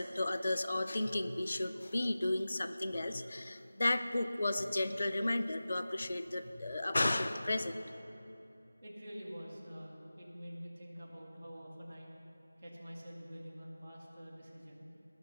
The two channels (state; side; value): inverted; both; correlation -0.96